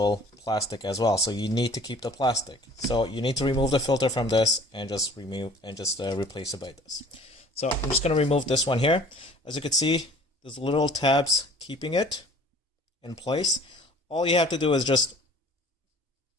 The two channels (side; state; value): both; normal; correlation 0.49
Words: plastic as well. So you need to keep the plastic. So you need to remove the filter from this and just replace it by this. So I'm just going to remove this one here. As you can see, there's little tabs keeping it in place. All you have to do is just